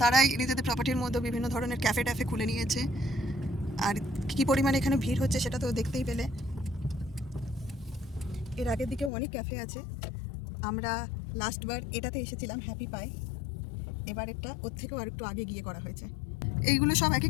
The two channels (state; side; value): drops out; right; at 9.1 s